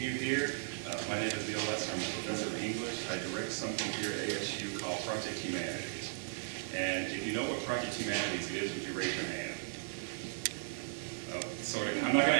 you here. My name is Neil Lester. I'm a professor of English. I direct something here at ASU called Project Humanities. And if you know what Project Humanities is, would you raise your hand? Oh, sort of. I'm not going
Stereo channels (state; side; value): silent; left; 54 dB below the other